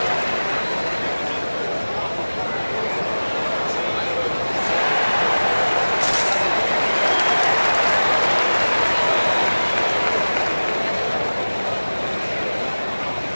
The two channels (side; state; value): both; inverted; correlation -1.00